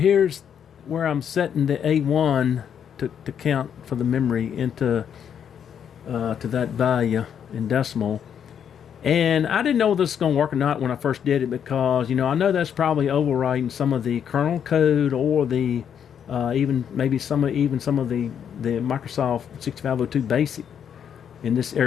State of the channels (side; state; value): right; quieter; 8.4 dB